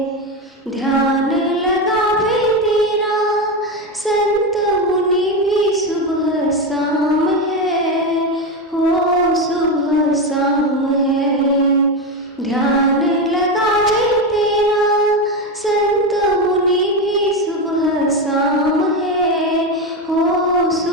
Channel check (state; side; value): normal; both; correlation 0.14